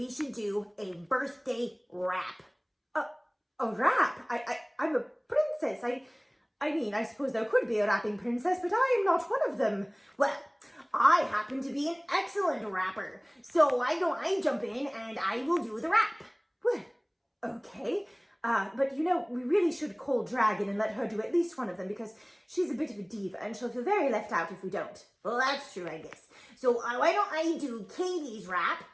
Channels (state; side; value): identical; both; correlation 1.00